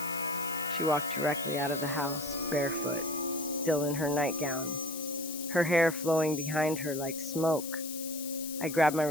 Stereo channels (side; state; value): left; noise; hiss, 9 dB below the sound